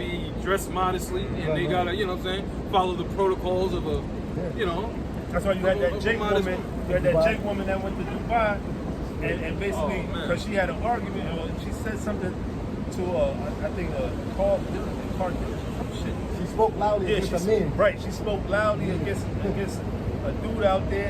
dressed modestly, and they gotta, you know what I'm saying, follow the protocols of a, you know. That's why you had that Of a Jake modest woman. woman. You had that Jake woman that went to Dubai, and basically Oh, man. because she had an argument, she said something to I think Carl some shit. She spoke loudly Yeah, against a man. right. She spoke loudly against a dude out there,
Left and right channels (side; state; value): both; identical; correlation 1.00